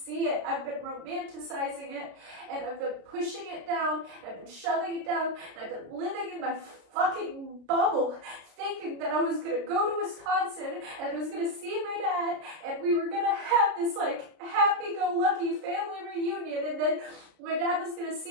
it. I've been romanticizing it, and I've been pushing it down, and I've been shoving it down, and I've been living in my fucking bubble, thinking that I was gonna go to Wisconsin, and I was gonna see my dad, and we were gonna have this like happy-go-lucky family reunion, and then my dad was gonna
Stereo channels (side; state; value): left; late; 33 ms